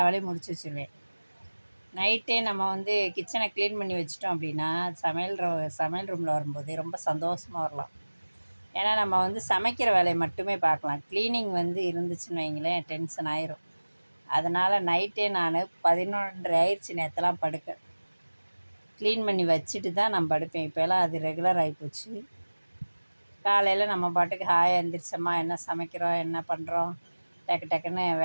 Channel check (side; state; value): both; inverted; correlation -1.00